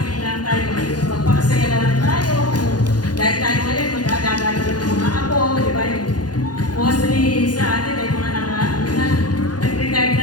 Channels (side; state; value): right; late; 0.69 ms